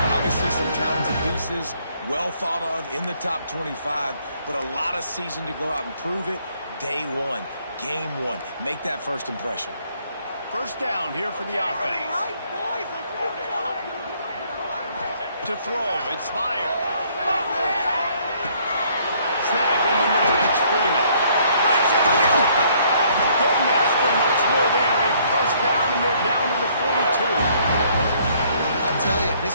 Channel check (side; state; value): both; inverted; correlation -0.64